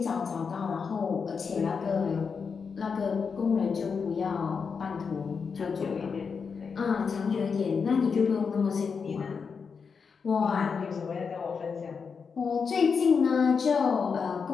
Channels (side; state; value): right; quieter; 5.7 dB